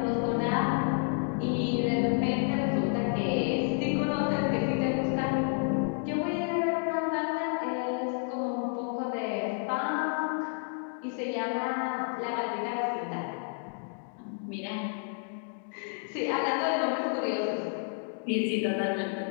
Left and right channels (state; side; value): silent; right; 58 dB below the other